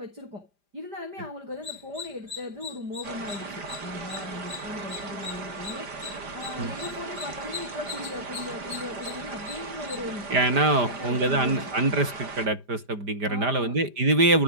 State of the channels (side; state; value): left; late; 5.0 ms